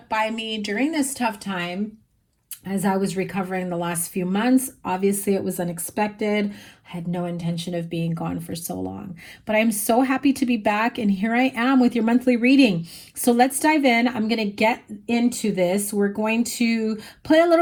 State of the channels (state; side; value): identical; both; correlation 1.00